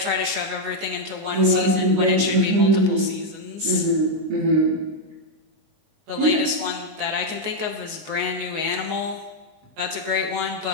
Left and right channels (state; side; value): late; left; 19 ms